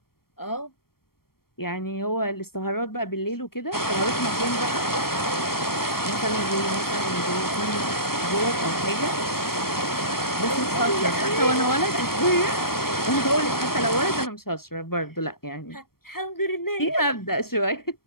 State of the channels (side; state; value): right; late; 0.94 ms